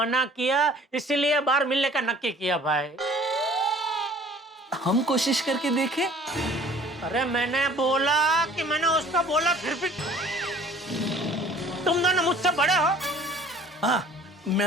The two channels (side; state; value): both; normal; correlation 0.51